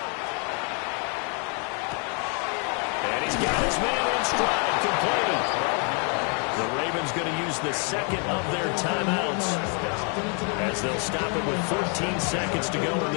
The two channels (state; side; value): quieter; right; 38.6 dB